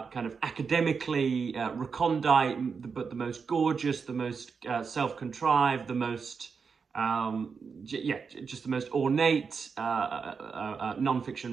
of academically recondite, but the most gorgeous, the most self-contrived, the most just the most ornate non-fiction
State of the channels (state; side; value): quieter; left; 5.6 dB